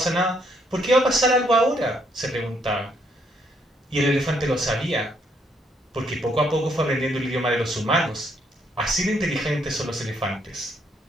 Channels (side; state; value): both; normal; correlation 0.71